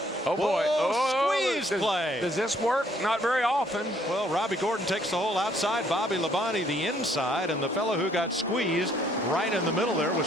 Oh boy! Squeeze play. Does this work? Not very often. Well, Robbie Gordon takes the hole outside. Bobby Labonte the inside, and the fellow who got squeezed right in the middle there was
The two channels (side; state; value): both; normal; correlation 0.65